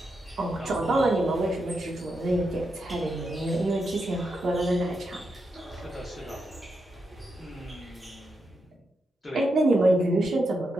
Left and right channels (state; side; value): normal; both; correlation 0.85